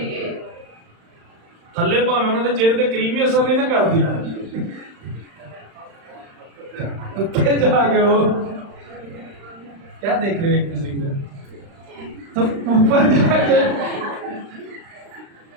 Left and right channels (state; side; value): late; left; 35 ms